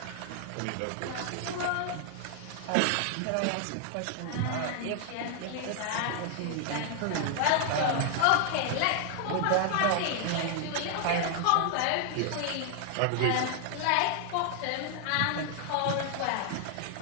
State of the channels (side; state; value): both; different; correlation 0.00